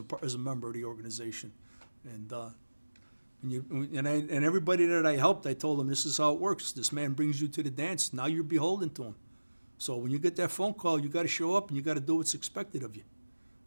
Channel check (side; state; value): both; inverted; correlation -1.00